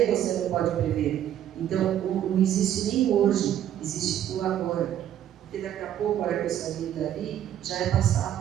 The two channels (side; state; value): left; quieter; 11.0 dB